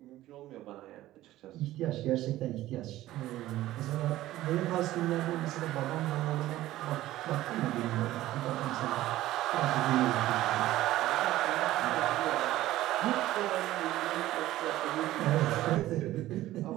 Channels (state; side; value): quieter; left; 15.3 dB